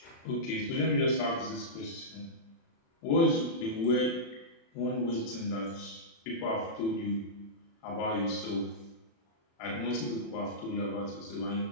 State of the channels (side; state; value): right; late; 36 ms